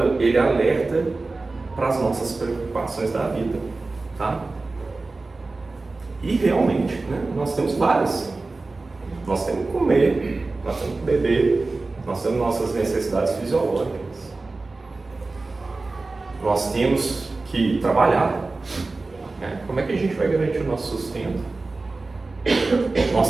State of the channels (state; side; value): quieter; left; 3.5 dB